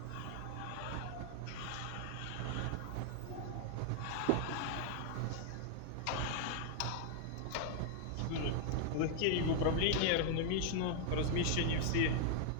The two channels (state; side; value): different; both; correlation 0.00